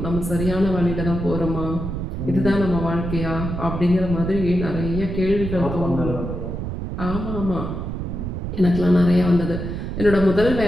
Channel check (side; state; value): right; noise; rumble, 5 dB below the sound